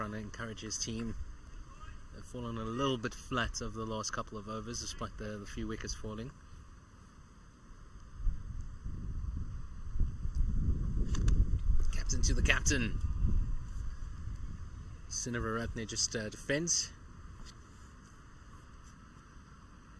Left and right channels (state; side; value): identical; both; correlation 1.00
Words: to encourage his team. They've fallen a little bit flat over the last couple of overs, despite the few wickets falling. Captain to the captain. Sinivaratne just defends.